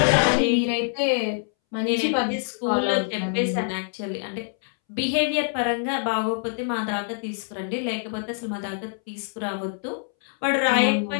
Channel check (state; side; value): silent; right; 62 dB below the other